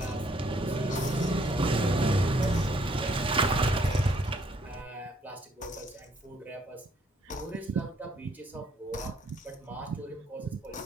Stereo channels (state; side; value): normal; both; correlation 0.66